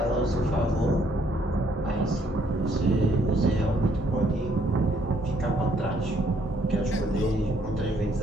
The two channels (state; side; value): normal; both; correlation 0.68